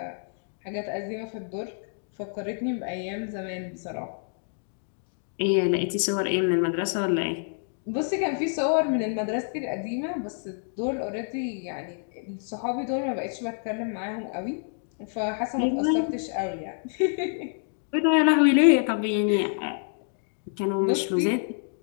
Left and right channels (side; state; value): right; silent; digital silence